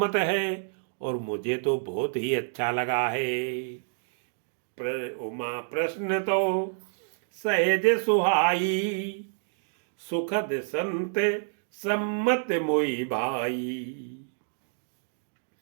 है और मुझे तो बहुत ही अच्छा लगा है। उमा प्रश्न तो सहज सुहाई, सुखद संत सम्मत मोई भाई।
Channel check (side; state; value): left; silent; digital silence